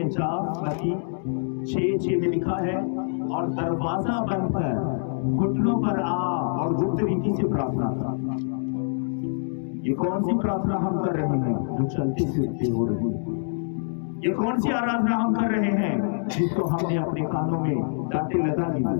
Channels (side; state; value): right; silent; digital silence